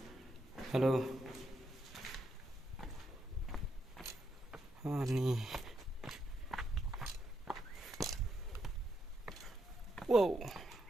halo ni wow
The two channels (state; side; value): normal; both; correlation 0.81